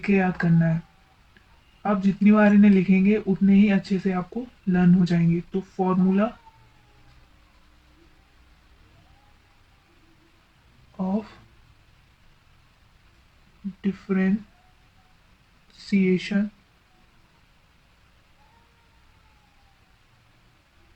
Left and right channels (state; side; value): identical; both; correlation 1.00